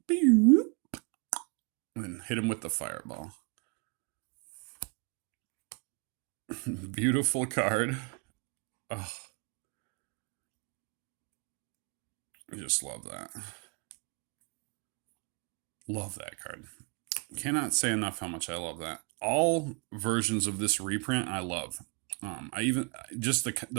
and then hit him with the fireball. Beautiful card. Oh, I just love that. Love that card. Cannot say enough how much I love that. All versions of this reprint I love. I even just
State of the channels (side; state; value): left; quieter; 34.6 dB